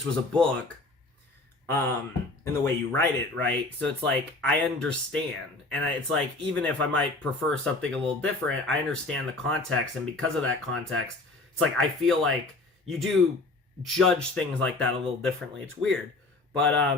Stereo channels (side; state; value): right; quieter; 3.1 dB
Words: was a book, in the way you write it, right? So it's like, I understand. And it's like, even if I might prefer something a little different, I understand the context. And because of that context, it's like, I feel like you do judge things like that a little differently. It's weird.